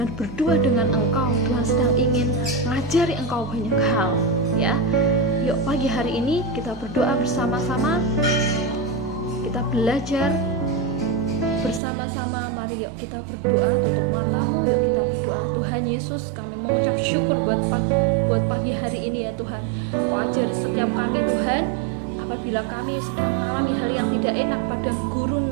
berdua dengan engkau. Tuhan sedang ingin mengajari engkau banyak hal ya. Yuk pagi hari ini kita berdoa bersama-sama, kita belajar bersama-sama. Mari yuk kita berdoa, tutup matamu, yuk kita berdoa. Tuhan Yesus, kami mengucap syukur buat pagi hari ini ya Tuhan. Kau ajari setiap kami Tuhan, apabila kami sedang mengalami hal yang tidak enak, padang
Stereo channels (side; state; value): left; drops out; at 11.8 s